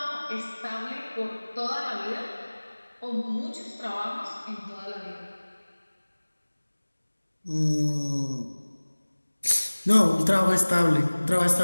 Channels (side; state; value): both; inverted; correlation -1.00